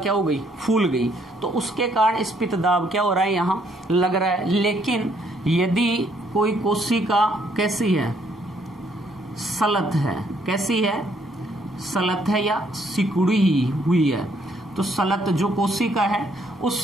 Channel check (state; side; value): normal; both; correlation 0.68